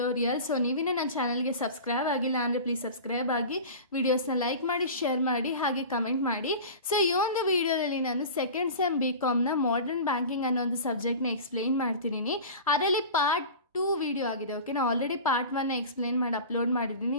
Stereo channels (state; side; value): inverted; both; correlation -0.34